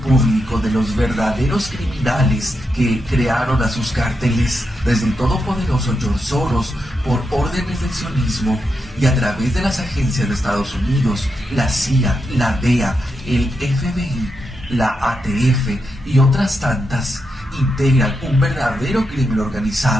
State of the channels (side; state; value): both; normal; correlation 0.85